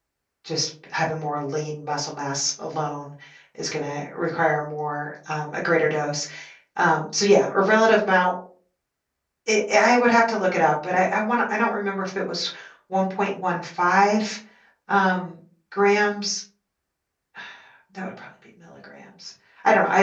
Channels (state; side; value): identical; both; correlation 1.00